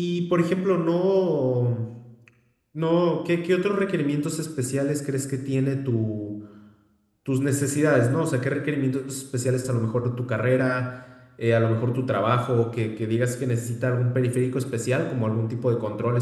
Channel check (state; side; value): identical; both; correlation 1.00